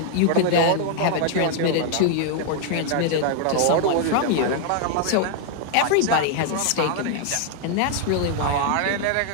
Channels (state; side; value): different; both; correlation 0.00